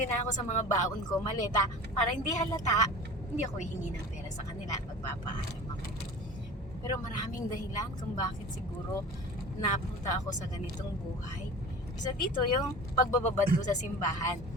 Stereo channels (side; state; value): both; normal; correlation 0.38